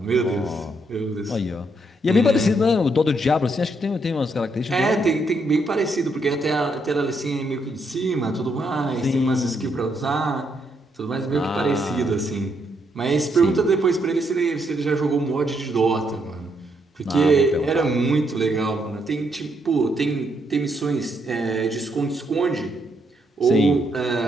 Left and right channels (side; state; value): both; normal; correlation 0.76